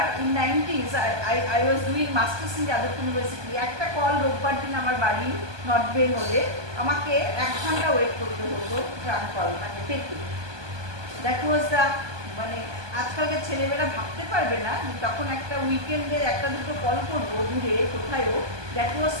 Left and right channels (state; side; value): late; left; 1.2 ms